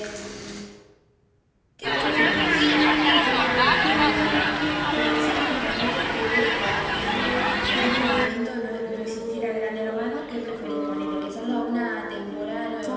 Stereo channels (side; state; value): both; identical; correlation 1.00